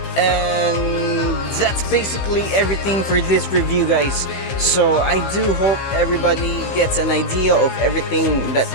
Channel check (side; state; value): right; late; 15 ms